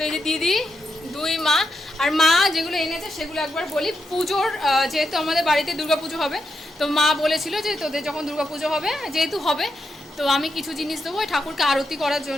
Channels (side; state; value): both; normal; correlation 0.84